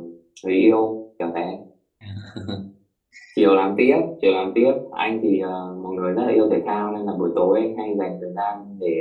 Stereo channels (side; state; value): both; identical; correlation 1.00